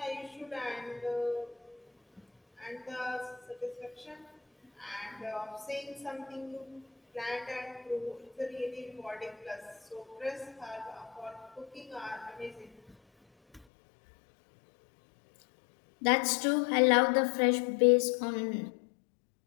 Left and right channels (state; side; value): drops out; right; at 13.7 s